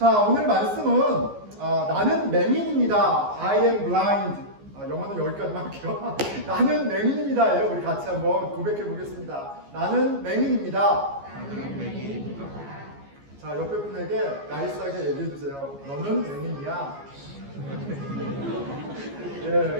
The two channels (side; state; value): left; late; 14 ms